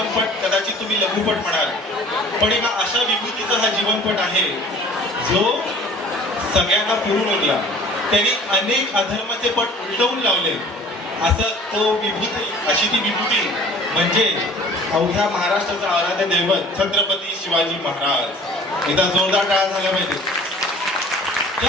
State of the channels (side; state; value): both; normal; correlation 0.48